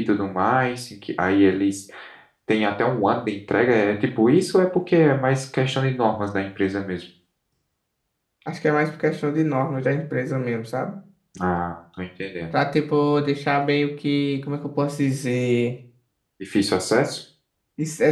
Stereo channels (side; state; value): both; identical; correlation 1.00